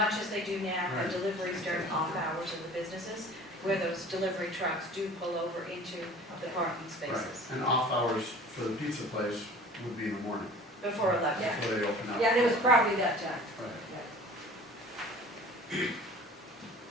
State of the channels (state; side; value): normal; both; correlation 0.45